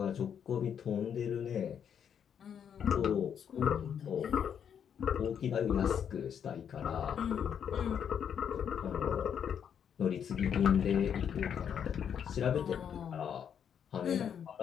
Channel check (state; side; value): quieter; right; 8.2 dB